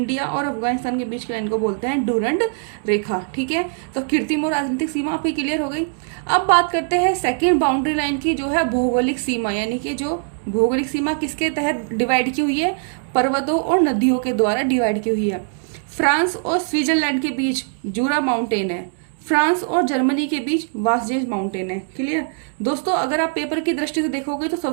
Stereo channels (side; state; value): left; silent; 64 dB below the other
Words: और अफगानिस्तान के बीच की लाइन को बोलते हैं डूरंड रेखा। ठीक है, तो कृत्रिम और राजनीतिक सीमा आपकी क्लियर हो गई। अब बात करते हैं सेकंड बाउंड्री लाइन की, जो है भौगोलिक सीमा, यानी कि जो भौगोलिक सीमा किसके तहत डिवाइड की हुई है? पर्वतों और नदियों के द्वारा डिवाइड की हुई है। फ्रांस और स्विट्जरलैंड के बीच जूरा माउंटेन है। फ्रांस और जर्मनी के बीच वासजेज माउंटेन है। क्लियर। दोस्तों, अगर आप पेपर की दृष्टि से देखोगे तो